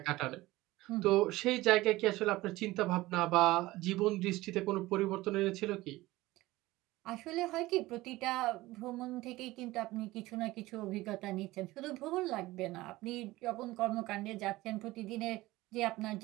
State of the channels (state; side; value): quieter; left; 18.6 dB